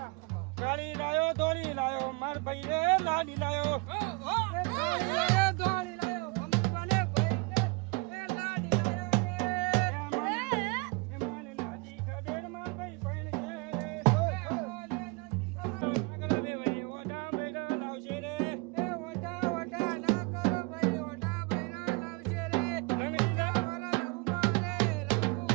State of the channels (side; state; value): left; quieter; 28.3 dB